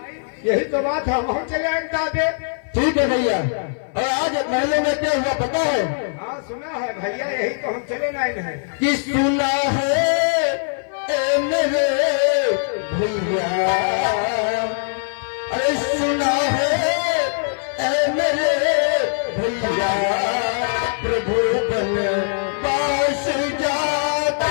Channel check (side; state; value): right; silent; 58 dB below the other